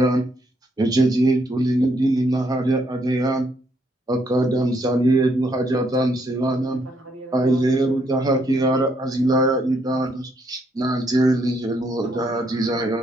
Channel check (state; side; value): normal; both; correlation 0.73